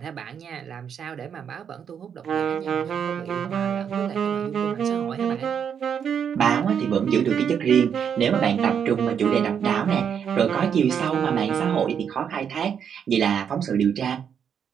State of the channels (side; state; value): left; quieter; 7.8 dB